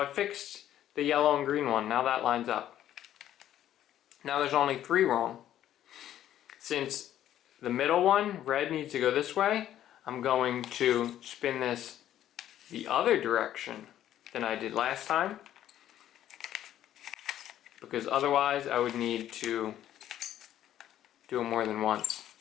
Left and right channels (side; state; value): right; quieter; 11.8 dB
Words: fixed the yellow and green one, now that lines up. Now there's only 3 wrong. Since the middle one, red, needs to go this way, I'm going to spin this the other direction than I did last time. Because otherwise I would need to do it more than once.